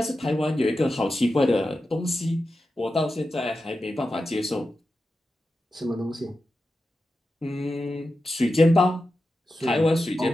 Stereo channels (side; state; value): both; normal; correlation 0.91